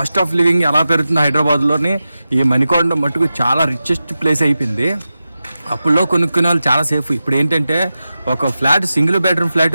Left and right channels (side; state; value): both; inverted; correlation -0.93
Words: ఆఫ్ లివింగ్ ఎలా పెరుగుతుంది హైదరాబాద్లోని, ఈ మణికొండ మటుకు చాలా రిచెస్ట్ ప్లేస్ అయిపోయింది. అప్పుల్లో కొనుక్కునే వాళ్ళు చాలా సేఫ్. ఇప్పుడు ఏంటంటే ఒక flat, single bedroom